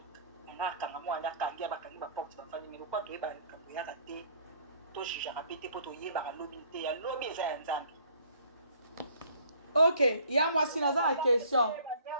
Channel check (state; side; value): inverted; both; correlation -0.56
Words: nga kanga mwana kangia bakangi baporte bafandi mais lokwa toyeba likambo yaka te tojugeaka mpe te mpo toyebaka lobi te ya lobi eza ya nzambe ok ya mwasi naza na question